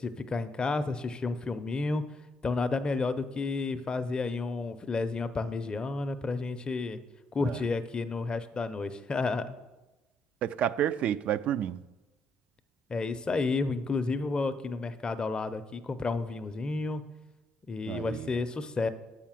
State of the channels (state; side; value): normal; both; correlation 0.76